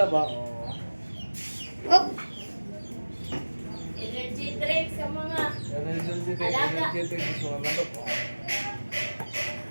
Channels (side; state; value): both; inverted; correlation -1.00